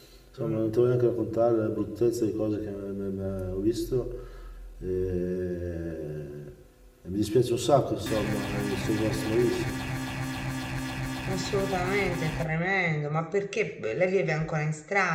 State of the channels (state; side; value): identical; both; correlation 1.00